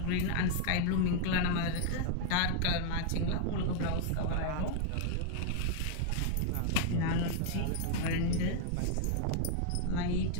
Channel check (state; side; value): different; both; correlation 0.00